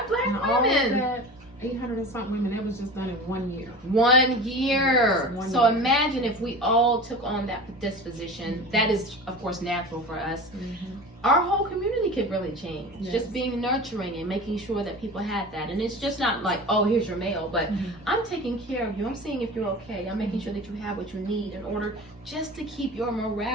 black women. All that 800 and something women, that was just done in 1 year. 1 year. Yes, so imagine if we all took on that disposition. That is, of course, natural for us. Our whole community could really change. Just being nurturing and making sure that people had that. And it's just not like, oh, here's your mail, but I'm taking care of you. I'm seeing if you're okay. I'm making sure that you have what you need in order just to keep your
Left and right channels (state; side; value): normal; both; correlation 0.34